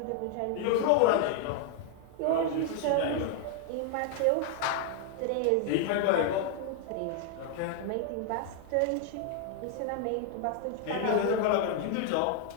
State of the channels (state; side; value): different; both; correlation 0.00